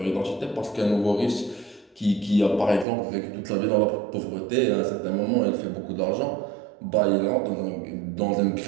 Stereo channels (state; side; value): drops out; left; at 2.9 s